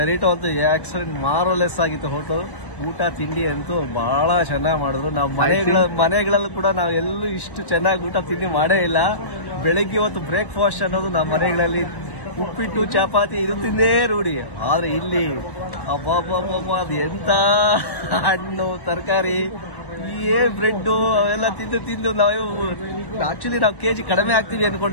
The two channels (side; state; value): right; late; 1.1 ms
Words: ಅಂತೂ ಎಕ್ಸಲೆಂಟ್ ಮಾರ್ವಲೆಸ್ ಆಗಿತ್ತು. ಹೋಟೆಲ್ ಊಟ ತಿಂಡಿ ಅಂತೂ ಬಹಳ ಚೆನ್ನಾಗಿ ಮಾಡಿದ್ರು. ನಾವು ಮನೆಗಳಲ್ಲೂ ಕೂಡ ನಾವು ಎಲ್ಲೂ ಇಷ್ಟು ಚೆನ್ನಾಗಿ ಊಟ ತಿಂಡಿ ಮಾಡೇ ಇಲ್ಲ. ಬೆಳಿಗ್ಗೆ ಹೊತ್ತು ಬ್ರೇಕ್ಫಾಸ್ಟ್ ಅನ್ನೋದು ನಮ್ಮ ಮನೆಗಳಲ್ಲಿ ಉಪ್ಪಿಟ್ಟು ಚಪಾತಿ ಇದು ತಿಂದೇ ರೂಢಿ. ಆದ್ರೆ ಇಲ್ಲಿ ಅಬ್ಬಬ್ಬಬ್ಬ ಅದು ಎಂತ ಹಣ್ಣು ತರಕಾರಿ ಬ್ರೆಡ್ ಅವೆಲ್ಲ ತಿಂದು ನಾವು ಆಕ್ಚುಲಿ ನಾವು ಕೆಜಿ ಕಡಿಮೆ ಆಗ್ತೀವಿ